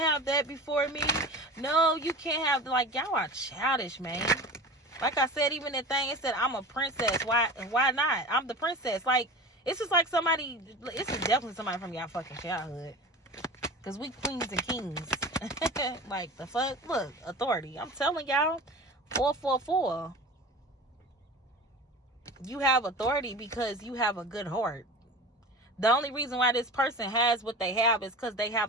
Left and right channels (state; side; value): normal; both; correlation 0.34